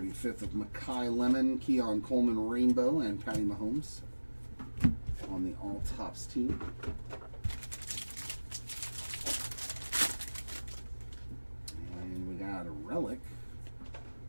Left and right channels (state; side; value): inverted; both; correlation -1.00